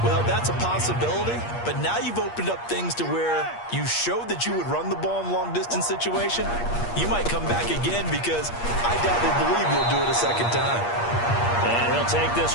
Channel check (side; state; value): right; late; 8.5 ms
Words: Well, that's a possibility, but now you've opened up things to where you showed that you would run the ball in long-distance situation. You might come back again because I doubt they believe you'll do it a second time. And he'll take this